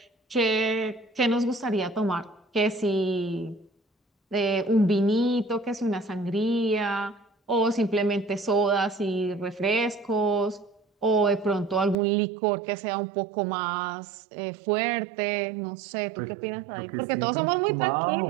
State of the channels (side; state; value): left; drops out; at 12.0 s